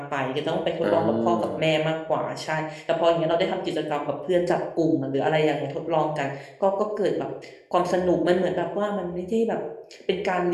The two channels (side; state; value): both; identical; correlation 1.00